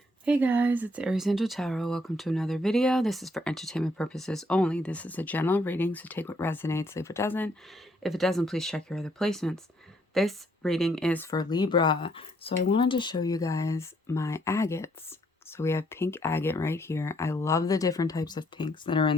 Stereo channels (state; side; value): normal; both; correlation 0.69